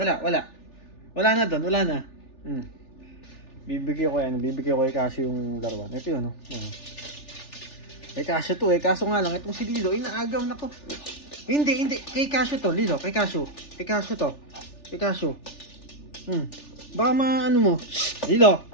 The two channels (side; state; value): right; late; 3.4 ms